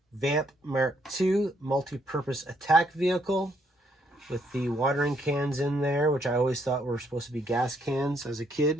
Vamp Mark II multi-purpose attack vehicle with the watering cans in there, which I always thought were supposed to be gas cans as a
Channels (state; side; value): normal; both; correlation 0.71